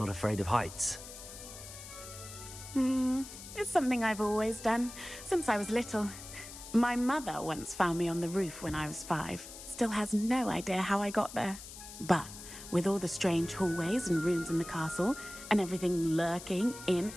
afraid of heights. It's something I've always done, since I was little. My mother once found me on the roof when I was 5. Still has no idea how I got there. But with all the strange hallways and rooms in the castle, and everything lurking in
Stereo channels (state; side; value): noise; left; hiss, 13 dB below the sound